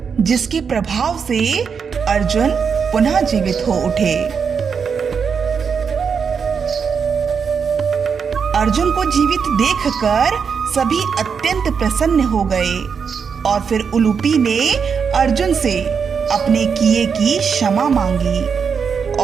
जिसके प्रभाव से अर्जुन पुनः जीवित हो उठे। अर्जुन को जीवित देखकर सभी अत्यंत प्रसन्न हो गए और फिर उलूपी ने अर्जुन से अपने किए की क्षमा मांगी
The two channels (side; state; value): left; quieter; 6.3 dB